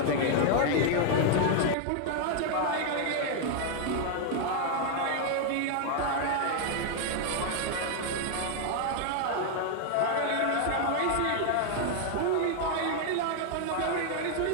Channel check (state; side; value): different; both; correlation 0.00